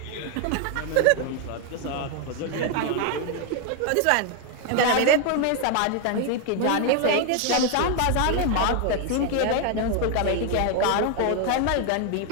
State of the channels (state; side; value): different; both; correlation 0.01